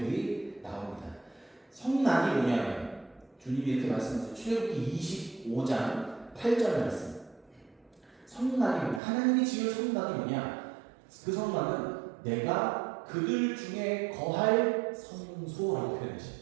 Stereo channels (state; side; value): drops out; left; at 9.0 s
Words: 나옵니다. 성막이 뭐냐면 주님이 이렇게 말씀하세요. 출애굽기 25장 8절 말씀. 성막이 뭐냐? 하나님이 지을 성막이 뭐냐? 그 성막은 내가 그들 중에 거할 성소라고